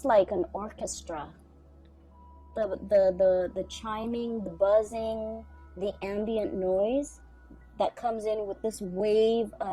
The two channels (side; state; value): both; identical; correlation 1.00